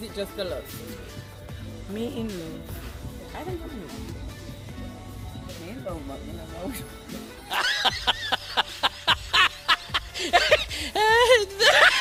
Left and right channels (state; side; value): identical; both; correlation 1.00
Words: it just a love? Me in love. I think I'm in love. Me in love, but me no love.